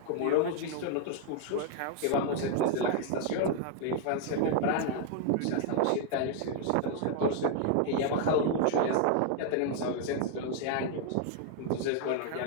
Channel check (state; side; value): different; both; correlation 0.00